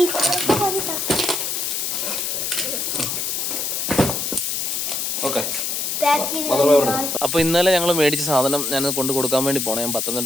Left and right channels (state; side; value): noise; left; hiss, 1 dB below the sound